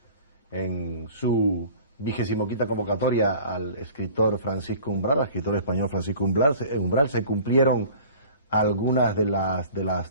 en su 25ª convocatoria al escritor Francisco Umbral, al escritor español Francisco Umbral. Se cumplieron algunas de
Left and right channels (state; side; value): inverted; both; correlation -0.45